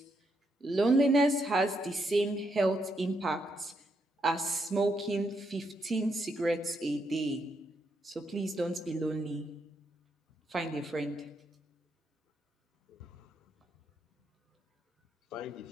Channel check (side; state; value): both; normal; correlation 0.79